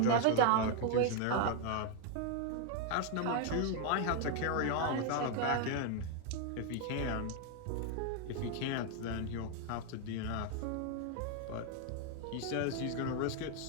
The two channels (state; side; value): different; both; correlation 0.01